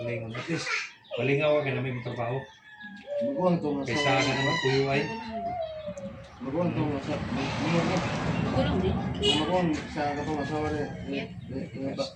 At least, balingaw ka na may trabaho. Maguang to nga Kaysa ka naman kuyo ay. Maguang to nga sa... Maguang sa katong asawa rin.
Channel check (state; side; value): identical; both; correlation 1.00